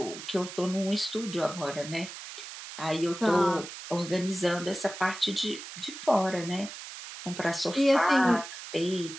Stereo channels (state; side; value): noise; right; hiss, 11 dB below the sound